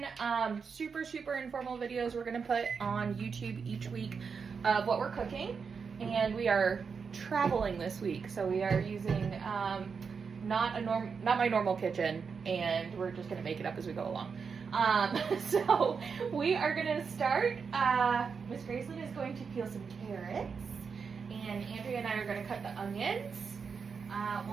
Super informal videos we're gonna put on YouTube each week of what we're cooking, and we are traveling this week, so we are using not my normal kitchen, and we're just gonna make it up as we go along. So we are gonna start. Miss Graceland is going to peel some carrots, and Andrea and I are gonna cut the onions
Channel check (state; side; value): quieter; left; 5.7 dB